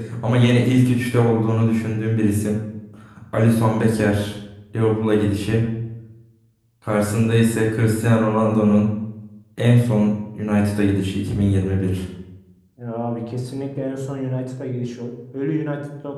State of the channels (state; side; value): identical; both; correlation 1.00